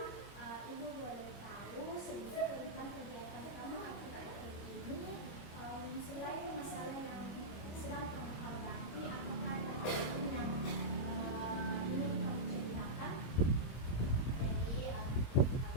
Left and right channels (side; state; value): right; late; 25 ms